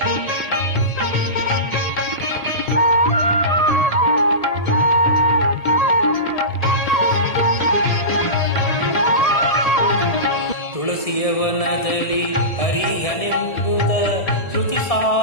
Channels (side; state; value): right; late; 1.7 ms